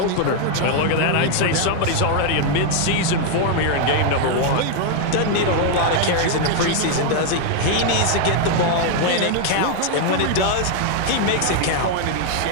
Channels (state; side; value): different; both; correlation 0.00